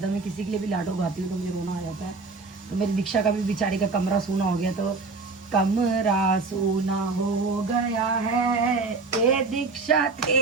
है। मैं किसी के लिए भी लाडो गाती हूँ तो मुझे रोना आ जाता है। तो मेरी दीक्षा का भी बेचारी का कमरा सूना हो गया, तो कमरा सूना हो गया है ए दीक्षा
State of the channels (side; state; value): left; quieter; 4.0 dB